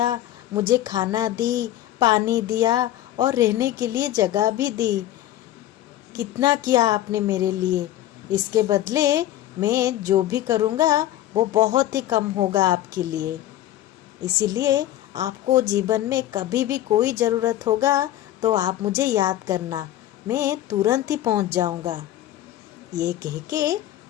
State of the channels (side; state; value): right; quieter; 13.4 dB